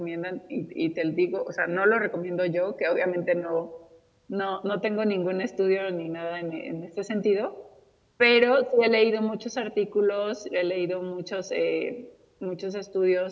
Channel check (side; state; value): both; identical; correlation 1.00